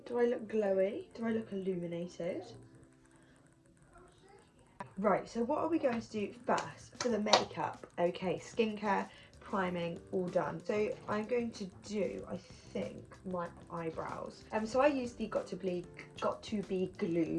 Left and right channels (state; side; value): identical; both; correlation 1.00